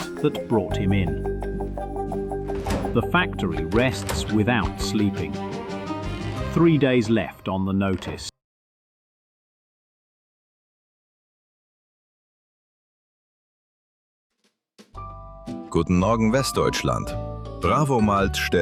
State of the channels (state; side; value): identical; both; correlation 1.00